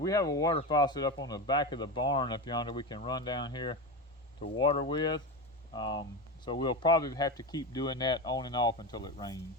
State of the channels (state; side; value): normal; both; correlation 0.20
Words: have a water faucet up on the back of the barn up yonder we can run down here to water with. So we'll probably have to keep doing that on and off until it rains.